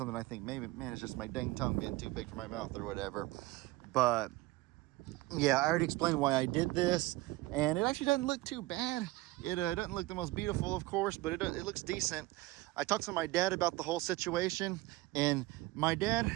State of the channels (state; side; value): quieter; left; 19.6 dB